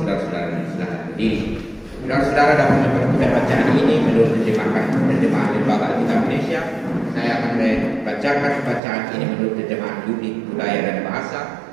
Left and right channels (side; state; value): left; drops out; at 8.8 s